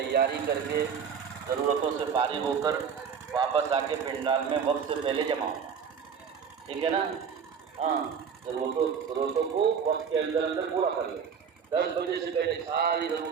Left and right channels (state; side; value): quieter; left; 6.8 dB